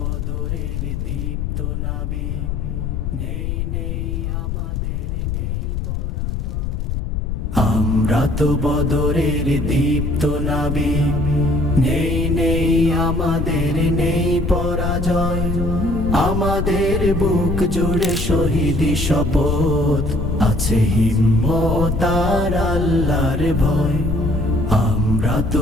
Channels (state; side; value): noise; left; rumble, 2 dB below the sound